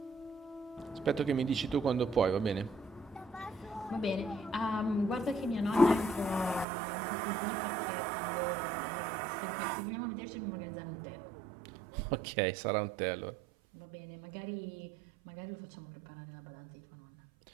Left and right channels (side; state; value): left; drops out; at 6.7 s